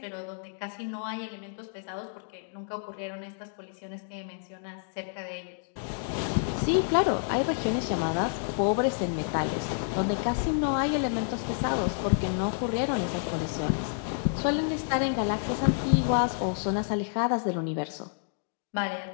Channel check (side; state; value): right; silent; digital silence